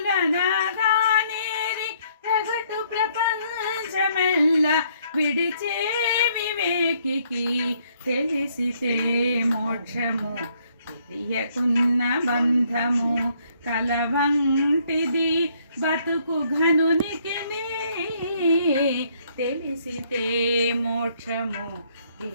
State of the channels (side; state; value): both; inverted; correlation -0.67